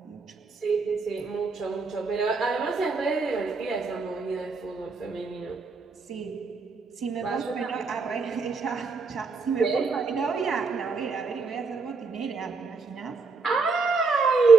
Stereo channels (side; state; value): left; quieter; 4.4 dB